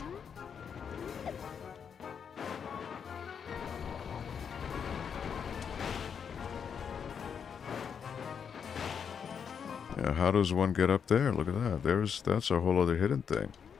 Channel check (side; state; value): right; quieter; 7.1 dB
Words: Yeah, how does one get up there? Look at that. That's a whole other hidden thing.